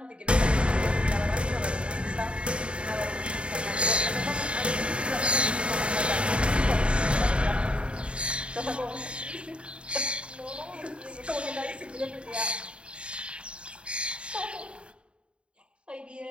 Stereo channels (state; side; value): late; left; 0.056 ms